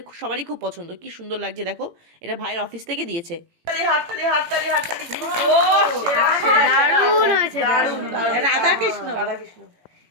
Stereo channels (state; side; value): late; left; 18 ms